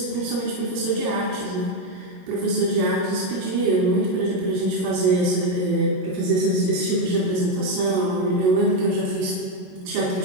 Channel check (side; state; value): left; late; 22 ms